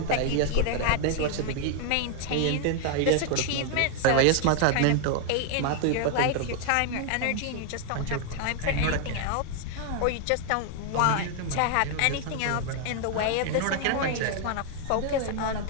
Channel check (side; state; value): both; different; correlation 0.00